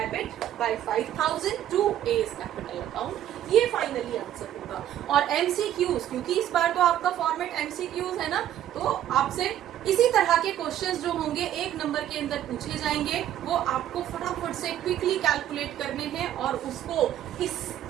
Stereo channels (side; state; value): left; quieter; 11.6 dB